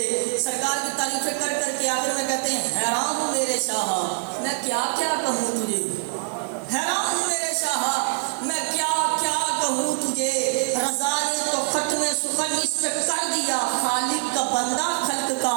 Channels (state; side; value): silent; left; 59 dB below the other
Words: سرکار کی تعریفیں کر کر کے آخر میں کہتے ہیں حیران ہوں میرے شاہ میں کیا کیا کہوں تجھے، حیران ہوں میرے شاہ میں کیا کیا کہوں تجھے. رضا نے تو ختم سخن اس پہ کر دیا، خالق کا بندہ خلق کا